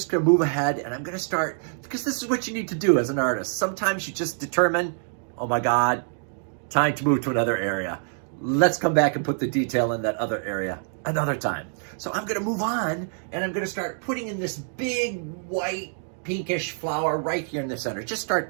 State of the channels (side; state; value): left; silent; 61 dB below the other